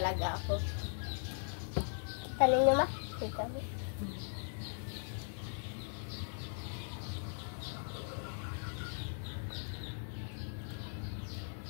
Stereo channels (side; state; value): right; silent; digital silence